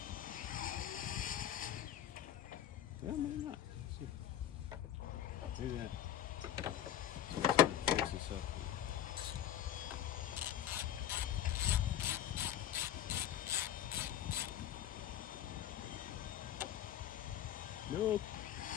Well, maybe not. Let's see. Maybe that. Fix this up. Nope.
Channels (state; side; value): quieter; right; 11.0 dB